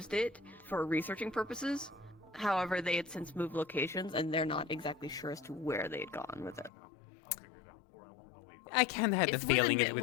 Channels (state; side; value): drops out; right; at 6.7 s